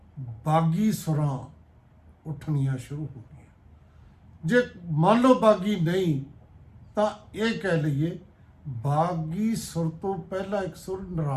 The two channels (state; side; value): identical; both; correlation 1.00